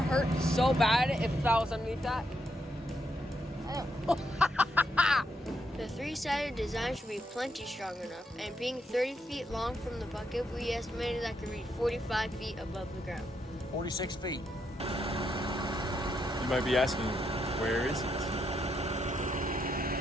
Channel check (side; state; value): both; normal; correlation 0.79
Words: hurt so bad if that was underneath that. The three-sided design should be plenty strong enough, and being 30 feet long from the bucket, we estimated that could reach 45 feet above the ground. 46 feet. You might be asking, where is it?